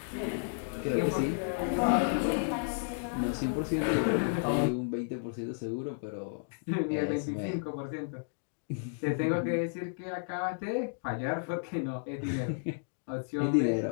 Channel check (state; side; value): silent; right; digital silence